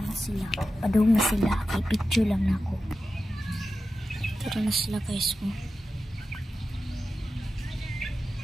sila. Padung na sila. Kay picture lang na ako. Tara na sila guys mo.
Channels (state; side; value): normal; both; correlation 0.92